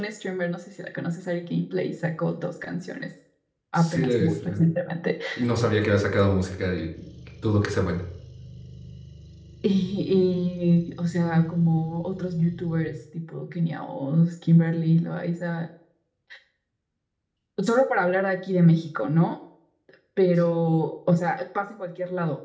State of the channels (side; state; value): both; identical; correlation 1.00